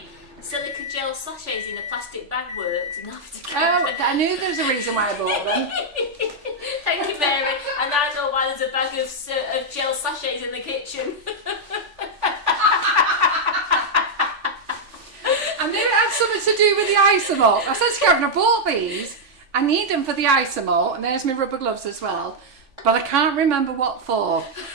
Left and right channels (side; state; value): left; late; 3.4 ms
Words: silica gel sachets in a plastic bag works. And I knew there was a reason why I bought them. Thank you, Mary. And I know why there's a bag of gel sachets in the kitchen. I knew it had something to do with the Isomalt. I said to Karen, I bought these. I need them for the Isomalt, and there's my rubber gloves as well. But I can't remember what for.